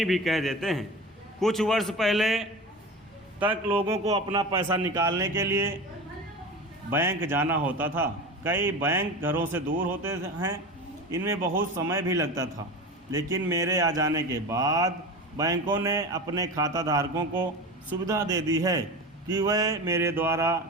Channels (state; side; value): normal; both; correlation 0.30